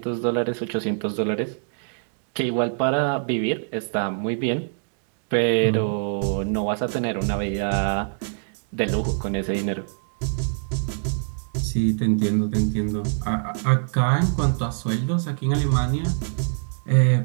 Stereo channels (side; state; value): left; silent; digital silence